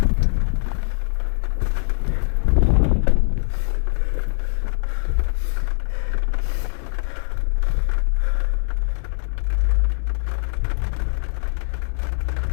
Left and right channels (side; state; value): right; silent; digital silence